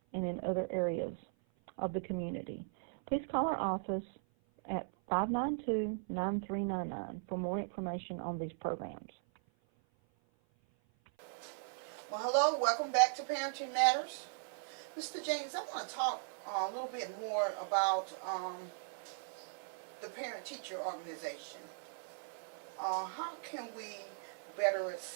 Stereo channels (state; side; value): silent; left; 52 dB below the other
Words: and in other areas of the community. Please call our office at 592-9399 for more information on these programs. Well, hello, welcome back to Parenting Matters. Mr. James, I want to talk a little bit more about the parent-teacher organization. How can we better